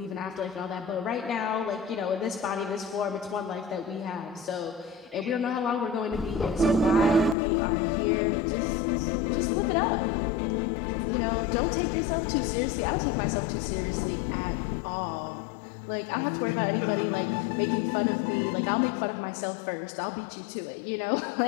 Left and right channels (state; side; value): drops out; right; at 7.4 s